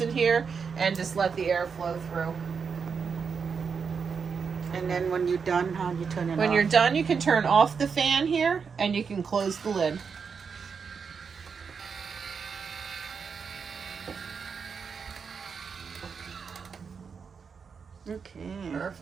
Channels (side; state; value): left; quieter; 5.9 dB